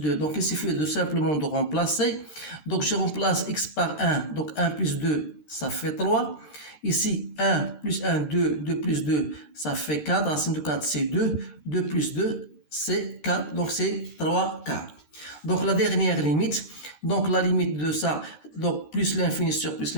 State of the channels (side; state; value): right; late; 13 ms